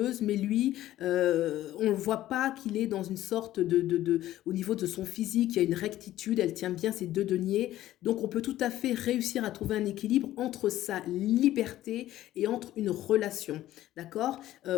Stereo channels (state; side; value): quieter; right; 14.1 dB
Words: mais lui, on ne voit pas qu'il est dans une sorte au niveau de son physique, il y a une rectitude, elle tient bien ses 2 deniers. Donc, on peut tout à fait réussir à trouver un équilibre entre sa liberté et entre une relation. D'accord ?